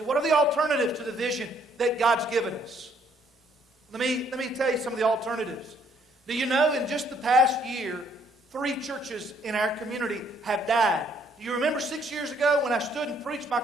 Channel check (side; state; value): both; normal; correlation 0.66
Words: What are the alternatives to the vision that God's given us? Let me tell you some of the alternatives. Do you know in just the past year, 3 churches in our community have died? Do you remember 6 years ago when I stood and preached my